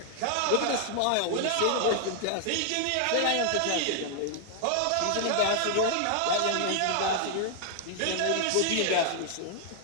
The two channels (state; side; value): different; both; correlation 0.00